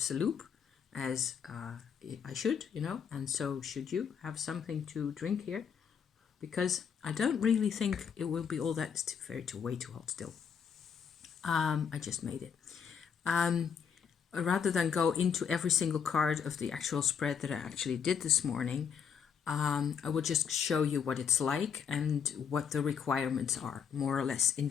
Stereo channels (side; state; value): right; quieter; 7.1 dB